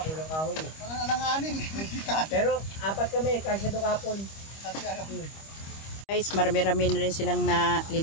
kulang kahoy eh. Parang alanganin. Pero 4 kami, kasya doon kahapon. Kasi ano. Guys, marami-rami na rin silang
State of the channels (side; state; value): right; late; 25 ms